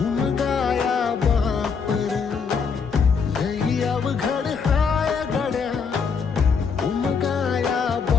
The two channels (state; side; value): quieter; right; 5.7 dB